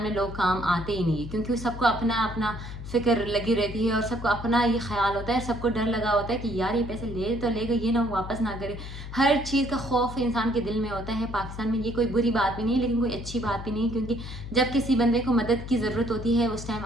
में लोग काम आते ही नहीं है, क्योंकि सबको अपना अपना फ़िक्र लगी रहती है और सबको अपना ये ख्याल होता है, सबको डर लगा होता है कि यार ये पैसे ले तो लेगा, ये ना वापस ना करे। हर चीज़ का खौफ इंसान के दिल में होता है। पाकिस्तान में ये कोई बुरी बात भी नहीं है, लेकिन कोई अच्छी बात भी नहीं, क्योंकि जब किसी बंदे को मदद की ज़रूरत होती है उस टाइम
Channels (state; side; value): noise; left; hum, 10 dB below the sound